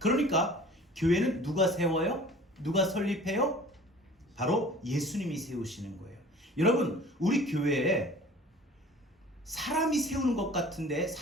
그러니까 교회는 누가 세워요? 누가 설립해요? 바로 예수님이 세우시는 거예요. 여러분, 우리 교회에 사람이 세우는 것 같은데,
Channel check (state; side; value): normal; both; correlation 0.46